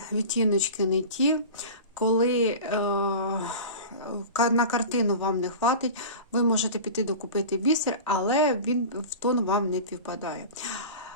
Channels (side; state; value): both; inverted; correlation -0.33